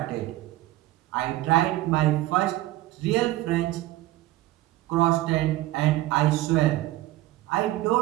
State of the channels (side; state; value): left; quieter; 16.4 dB